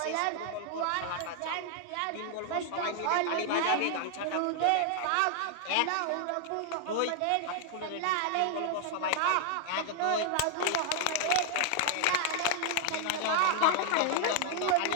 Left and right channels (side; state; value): both; different; correlation 0.00